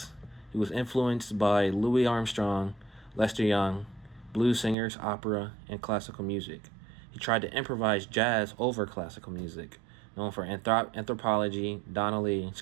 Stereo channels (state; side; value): drops out; left; at 4.8 s